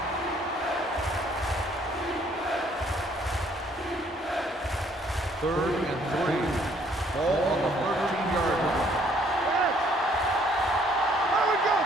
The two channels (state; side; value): normal; both; correlation 0.63